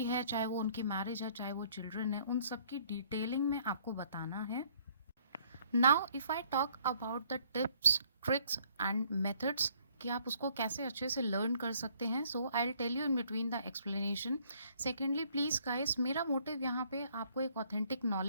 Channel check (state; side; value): inverted; both; correlation -0.63